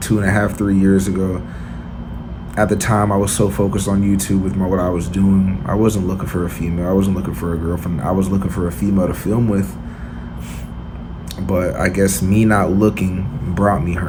3 years ago. At the time, I was so focused on YouTube with what I was doing. I wasn't looking for a female. I wasn't looking for a girlfriend. I was looking for a female to film with. But I guess me not looking brought me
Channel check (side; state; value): both; identical; correlation 1.00